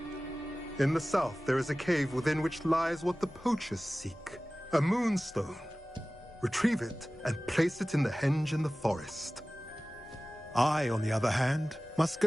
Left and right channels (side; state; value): both; normal; correlation 0.97